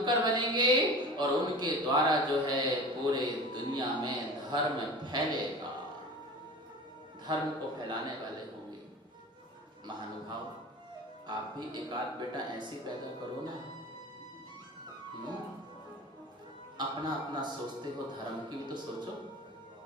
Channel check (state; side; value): normal; both; correlation 0.36